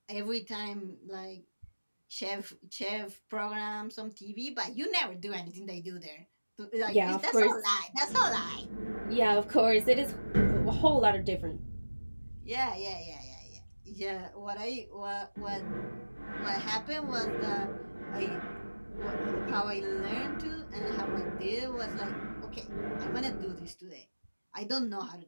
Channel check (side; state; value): both; inverted; correlation -1.00